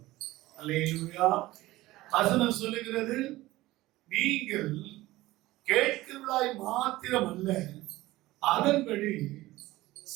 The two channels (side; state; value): left; quieter; 17.8 dB